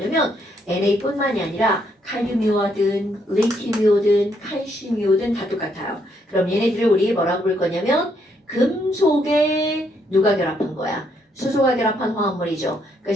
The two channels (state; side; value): normal; both; correlation 0.73